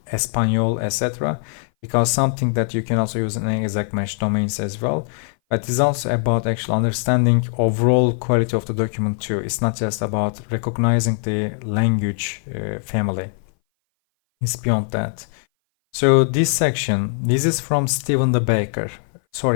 Espanol, etc., because something that you can also use in exact match domains as well. But it's also about actually understanding overall quality of the document too. It's not just about recognizing the language family. It's beyond that. So this section, this is from Stephen the Baker.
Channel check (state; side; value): silent; right; 59 dB below the other